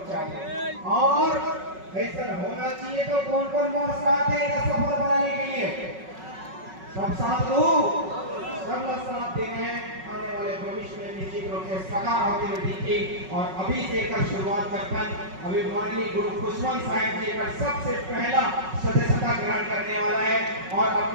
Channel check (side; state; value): left; late; 5.4 ms